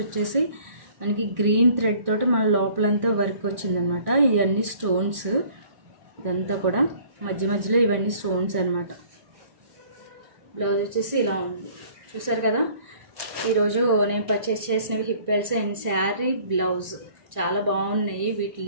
వచ్చేసి మనకి గ్రీన్ థ్రెడ్ తోటి మన లోపలంతా వర్క్ వచ్చిందనమాట. ఇవన్నీ స్టోన్స్, ఇదంతా కూడా మధ్య మధ్యలో ఇవన్నీ స్టోన్స్ అనమాట. బ్లౌజ్ వచ్చేసి ఇలా ఉంది, చూసారు కదా. ఈరోజు నేను పర్చేస్ చేసినవి hip belts and sari blouse చాలా బాగున్నాయి. వీటి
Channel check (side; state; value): left; late; 1.6 ms